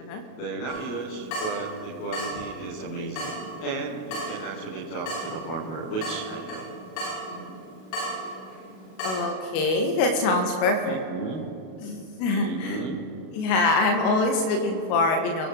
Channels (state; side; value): late; right; 37 ms